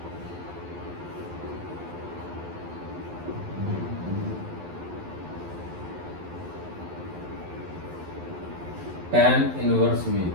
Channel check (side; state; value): left; late; 11 ms